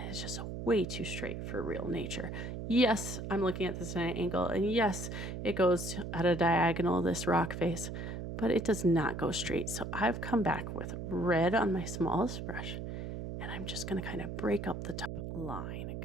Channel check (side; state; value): right; noise; hum, 6 dB below the sound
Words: it's just way too straight for real nature. Yes, I'm looking at this at an angle, and yes, it goes at a diagonal, this rock face, but it does not go straight. So I've come back with red on my smallest brush, and I'm just going to kind of break up the top line and